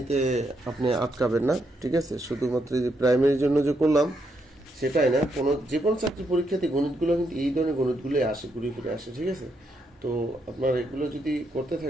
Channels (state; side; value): normal; both; correlation 0.78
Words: আপনি আটকাবেন না। ঠিক আছে, শুধুমাত্র যে প্রাইমারির জন্য যে করলাম সেটাই না, যে কোনো চাকরি পরীক্ষাতে গণিতগুলো কিন্তু এই ধরনের গণিতগুলোই আসে, ঘুরে ফিরে আসে। ঠিক আছে, তো আপনারা এগুলো যদি করতে